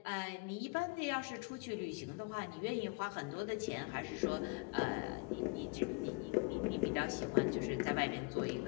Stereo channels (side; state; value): right; quieter; 29.7 dB